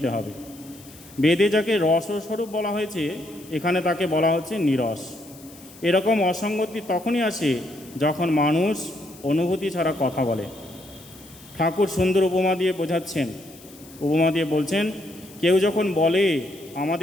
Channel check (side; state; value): left; noise; hiss, 22 dB below the sound